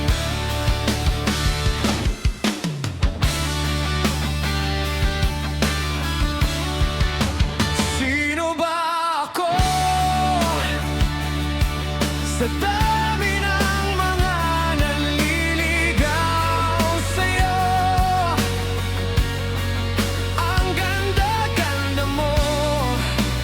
Sino ba ako? Sa dami ng mga nanliligaw sa'yo, ang ganda-ganda mo.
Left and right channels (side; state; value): both; identical; correlation 1.00